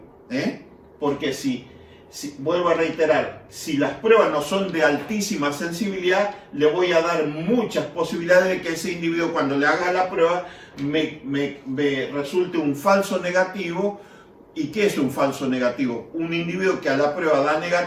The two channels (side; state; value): both; identical; correlation 1.00